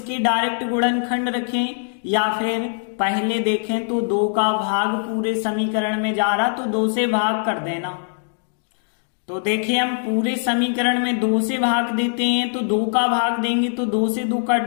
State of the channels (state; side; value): silent; right; digital silence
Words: डायरेक्ट गुणनखंड रखें, या फिर पहले देखें तो 2 का भाग पूरे समीकरण में जा रहा, तो 2 से भाग कर देना। तो देखिए, हम पूरे समीकरण में 2 से भाग देते हैं, तो 2 का भाग देंगे तो 2 से 2